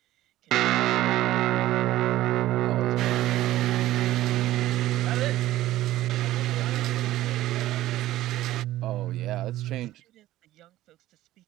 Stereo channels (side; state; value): left; quieter; 15.1 dB